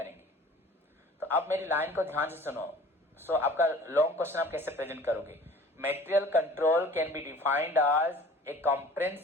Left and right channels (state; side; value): normal; both; correlation 0.46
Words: तो अब मेरी लाइन को ध्यान से सुनो. सो आपका लॉन्ग क्वेश्चन आप कैसे प्रेजेंट करोगे? Material control can be defined as a